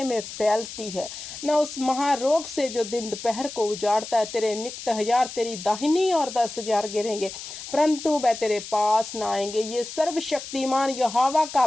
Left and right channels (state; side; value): noise; left; hiss, 11 dB below the sound